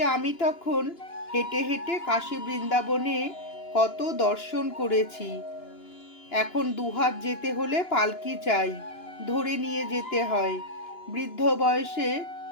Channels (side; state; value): right; late; 2.9 ms